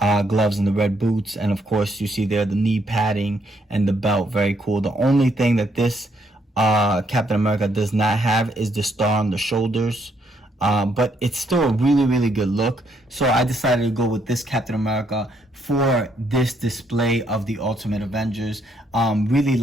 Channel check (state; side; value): normal; both; correlation 0.73